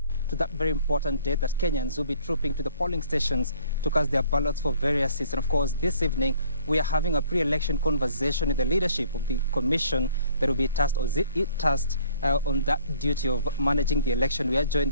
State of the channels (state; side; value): inverted; both; correlation -0.57